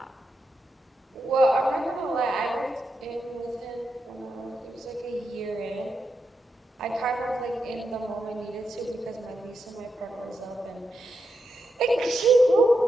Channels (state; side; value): normal; both; correlation 0.85